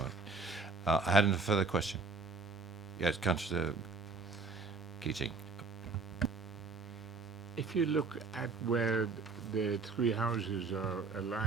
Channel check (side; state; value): left; quieter; 4.1 dB